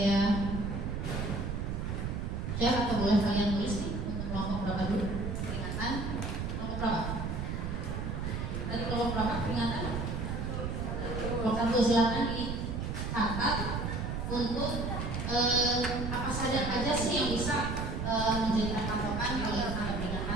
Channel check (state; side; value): noise; right; rumble, 3 dB below the sound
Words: share atau boleh kalian tulis nih untuk kelompok berapa dulu peringatan, kelompok berapa? Tadi kelompok berapa peringatan? Kelompok 1 silakan dicatat untuk apa saja sih yang bisa menjadikan patokan kalau kita ada